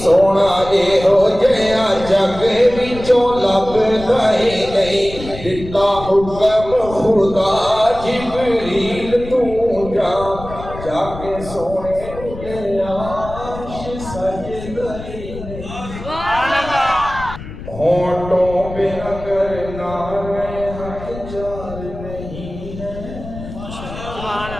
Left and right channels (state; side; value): noise; left; rumble, 12 dB below the sound